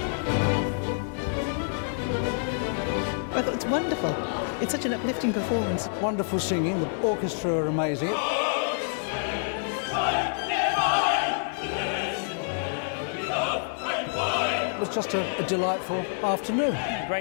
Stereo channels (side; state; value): right; silent; digital silence